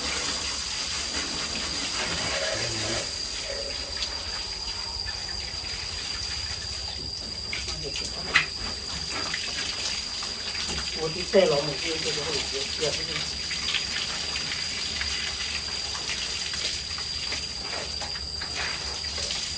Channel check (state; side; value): identical; both; correlation 1.00